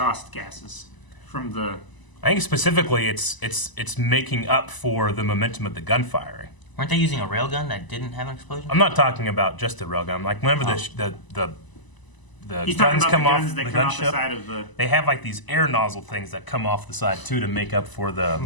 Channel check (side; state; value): right; late; 1.0 ms